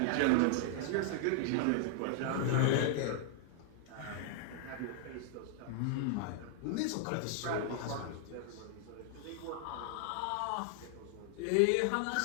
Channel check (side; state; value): both; different; correlation -0.01